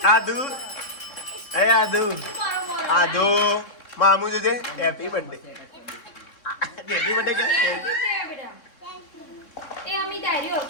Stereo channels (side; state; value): right; late; 3.6 ms